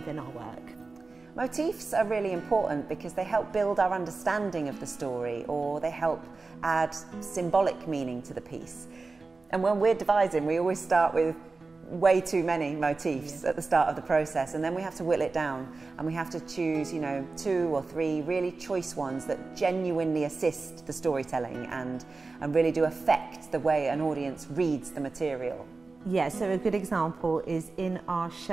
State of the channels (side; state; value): left; quieter; 3.8 dB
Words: our work. Motifs are really important because they help build our understanding of the story, or they help add symbolic meaning to the piece. And when we're devising, we always start with way too many motifs at the start of the process, and then we have to whittle it down, and we have to choose, 2 or 3 really choice ones that genuinely assist the storytelling and really do affect the way an audience reads the material. Yeah, so a good example is in our